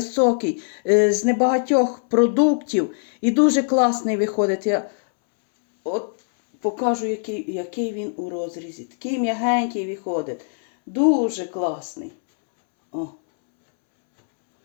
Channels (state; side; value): silent; right; 64 dB below the other